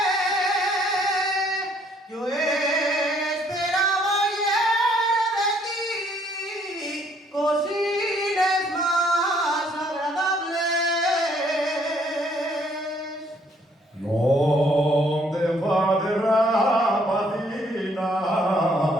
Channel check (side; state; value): both; normal; correlation 0.65